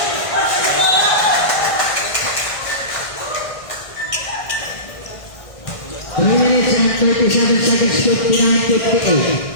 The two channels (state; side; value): late; right; 1.6 ms